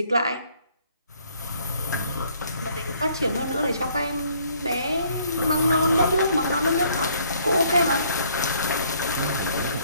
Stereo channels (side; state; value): both; inverted; correlation -0.63